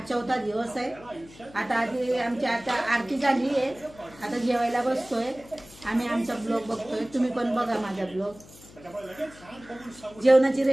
4था दिवस आहे. आता आधी आमची आता आरती झाली आहे. आता जेवायला बसतोय आम्ही. आमचा ब्लॉग बघतोय. तुम्ही पण बघा माझा ब्लॉग. जेवणाची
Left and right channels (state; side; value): noise; left; hum, 21 dB below the sound